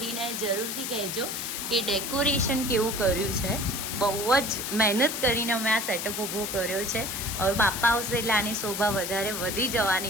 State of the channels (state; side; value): noise; left; hiss, 4 dB below the sound